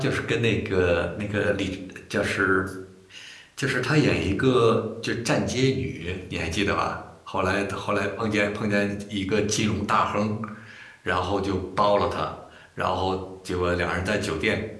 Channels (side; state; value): both; identical; correlation 1.00